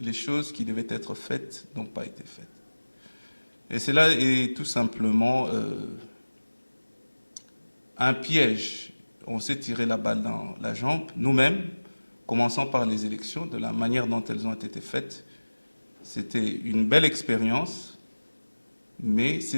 choses qui devaient être faites n'ont pas été faites. Et cela est tout simplement un piège. On s'est tiré la balle dans la jambe, nous-mêmes, commençant par les élections, de la manière dont elles ont été faites. C'était une belle expérience, mais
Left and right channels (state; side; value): inverted; both; correlation -1.00